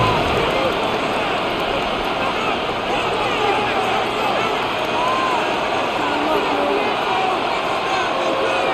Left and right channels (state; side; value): identical; both; correlation 1.00